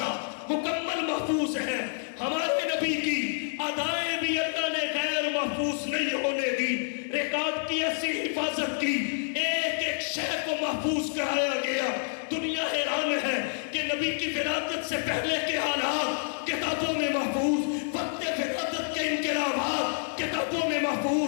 مکمل محفوظ ہے۔ ہمارے نبی کی ادائیں بھی اللہ نے غیر محفوظ نہیں ہونے دی، ریکارڈ کی ایسی حفاظت کی، ایک شے کو محفوظ کرایا گیا۔ دنیا حیران ہے کہ نبی کی ولادت سے پہلے کے حالات کتابوں میں محفوظ، وقت ولادت کے کتابوں میں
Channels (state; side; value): silent; right; 59 dB below the other